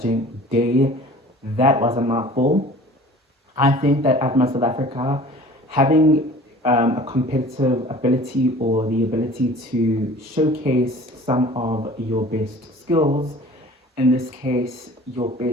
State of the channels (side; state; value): both; normal; correlation 0.45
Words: day. That was a mouthful. I think that at Miss South Africa, having a competitive ability or the ability to showcase some of your best skills, in this case, your